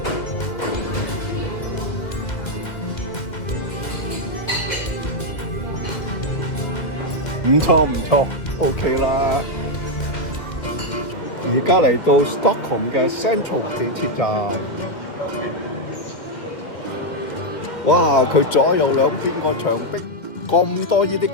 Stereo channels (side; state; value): right; late; 2.1 ms